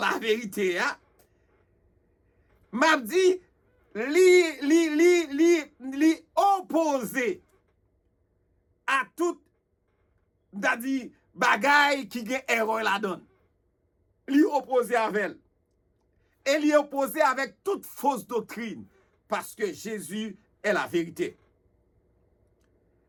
vérité, m'a dit, li opposé à tout d'adi bagay qui gen erreur la donne. Li opposé avec elle. Et li opposé avec toute fausse doctrine parce que Jésus est la vérité.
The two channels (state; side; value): identical; both; correlation 1.00